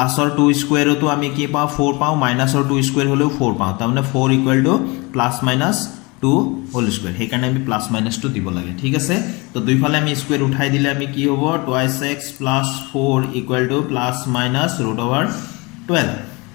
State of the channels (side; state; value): right; quieter; 26.4 dB